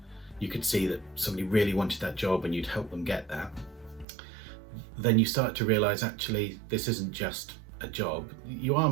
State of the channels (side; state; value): left; drops out; at 4.0 s